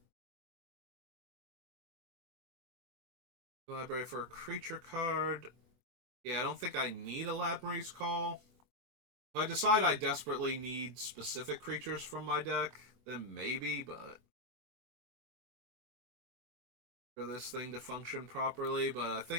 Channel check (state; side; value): late; left; 24 ms